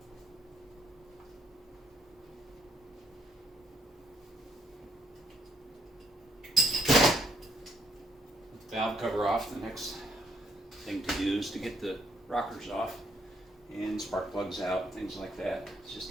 Valve cover off, the next thing to do is to get the rockers off and spark plugs out, things like that. It's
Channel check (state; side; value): normal; both; correlation 0.71